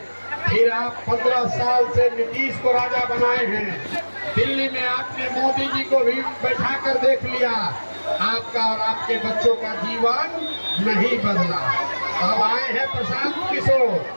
फिर आप 15 साल से नीतीश को राजा बनाए हैं। दिल्ली में आपने मोदी जी को भी बैठा कर देख लिया, आपका और आपके बच्चों का जीवन नहीं बदला। अब आए हैं प्रशांत किशोर,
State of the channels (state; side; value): inverted; both; correlation -1.00